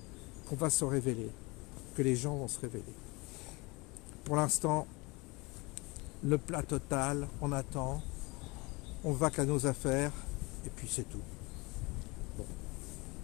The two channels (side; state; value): right; quieter; 25.6 dB